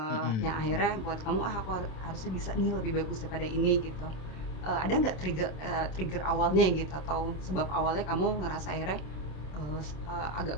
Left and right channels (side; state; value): right; late; 27 ms